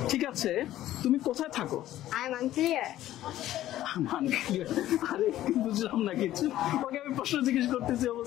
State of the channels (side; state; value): right; quieter; 13.7 dB